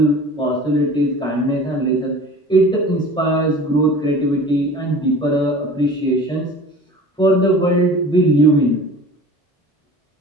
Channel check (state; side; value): normal; both; correlation 0.41